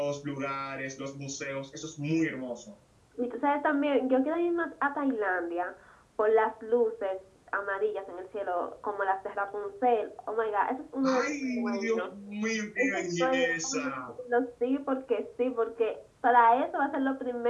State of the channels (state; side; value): identical; both; correlation 1.00